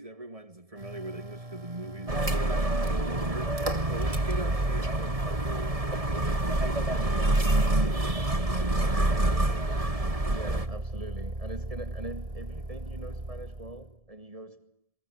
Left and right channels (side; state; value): left; late; 1.7 ms